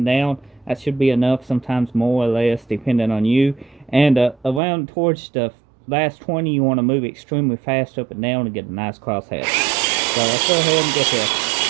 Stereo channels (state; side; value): drops out; left; at 4.6 s